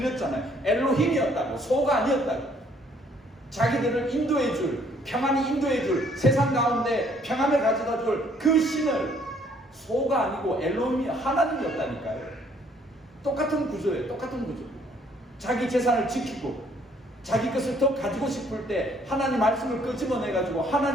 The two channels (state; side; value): normal; both; correlation 0.63